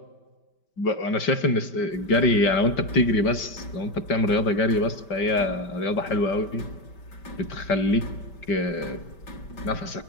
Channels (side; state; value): right; late; 5.1 ms